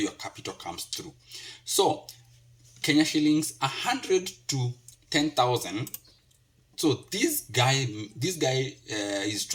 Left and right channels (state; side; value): identical; both; correlation 1.00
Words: capital comes through. So Kenya shillings 100 to 10,000. So this guy is